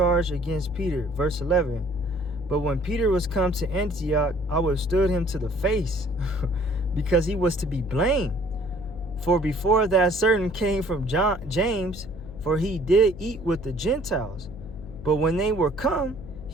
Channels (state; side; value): noise; left; hum, 14 dB below the sound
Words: against Peter, verse 11. But when Peter was come to Antioch, I withstood him to the face, because he was to be blamed. For before that certain came from James, for he did eat with the Gentiles. But when they were come,